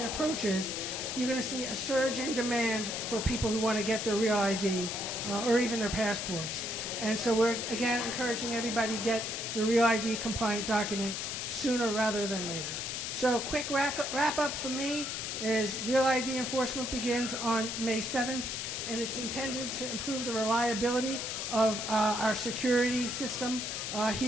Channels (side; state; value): left; noise; hiss, 4 dB below the sound